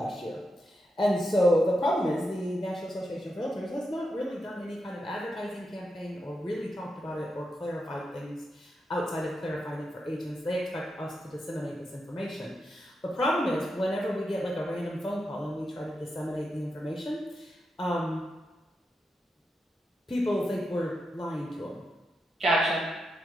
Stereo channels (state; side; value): normal; both; correlation 0.86